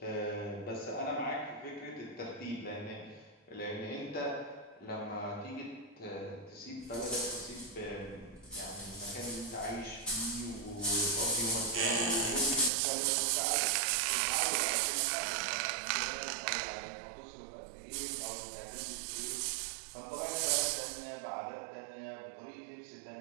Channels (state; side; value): drops out; left; at 12.7 s